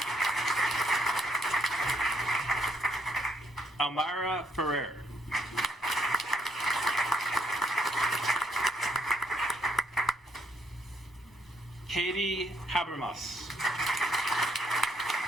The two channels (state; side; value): normal; both; correlation 0.73